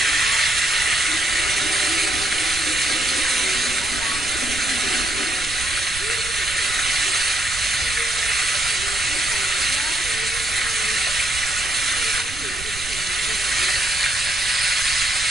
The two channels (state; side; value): noise; right; rumble, 13 dB below the sound